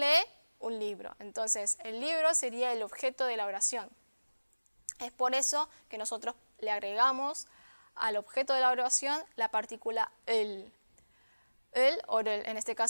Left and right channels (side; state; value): both; inverted; correlation -1.00